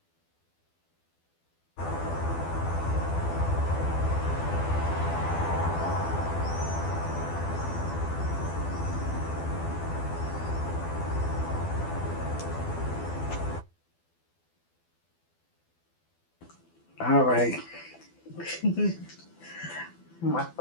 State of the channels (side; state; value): right; late; 12 ms